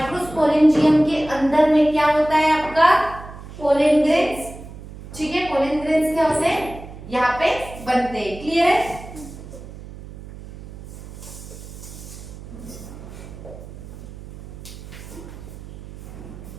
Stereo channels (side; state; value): right; noise; hum, 14 dB below the sound